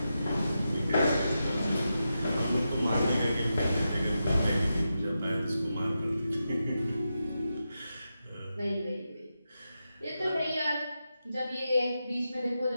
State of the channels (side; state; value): both; inverted; correlation -0.89